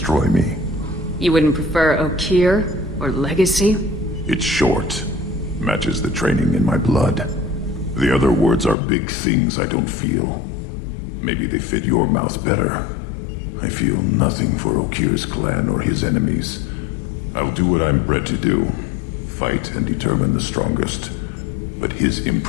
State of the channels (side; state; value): right; drops out; at 8.8 s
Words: me. You wouldn't prefer Okeer or Legacy? It's short. Matches the training in my blood. The other words are big things I don't feel. Maybe they fit your mouth better. I feel nothing for Okeer's clan or his enemies. I'll do what I'm bred to do. Fight and determine the strongest. But his